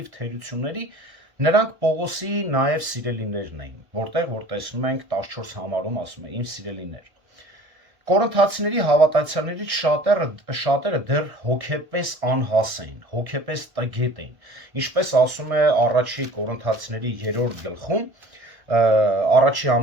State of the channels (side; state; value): left; late; 1.1 ms